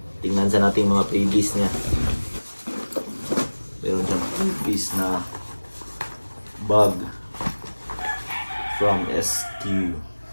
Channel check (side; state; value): both; inverted; correlation -1.00